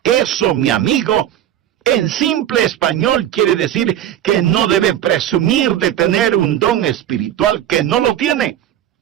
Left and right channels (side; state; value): left; quieter; 11.2 dB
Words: Eso, mi amigo, en simple español quiere decir que no debe presumir de tener un don espiritual que no lo tiene.